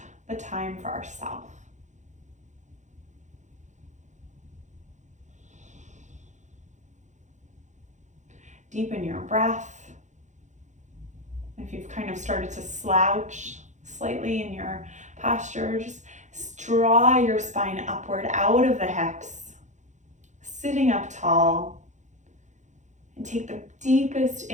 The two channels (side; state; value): left; late; 0.35 ms